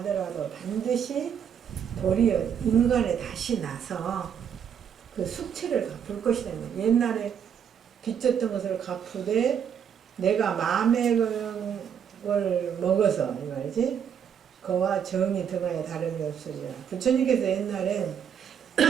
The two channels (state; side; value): quieter; left; 8.1 dB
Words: 반드시 도리어 인간에 다시 나서 그 숙취를 갚을 것이다. 옛날에 빚졌던 것을 갚으되 내가 마음의 걸 먹어서 이 말이지 그와 정이 등하여 다름이 없으리라. 부처님께서 옛날에